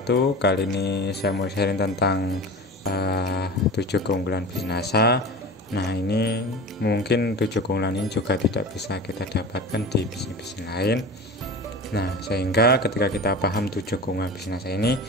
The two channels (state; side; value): normal; both; correlation 0.33